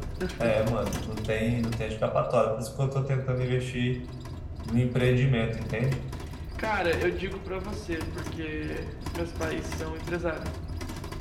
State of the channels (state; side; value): identical; both; correlation 1.00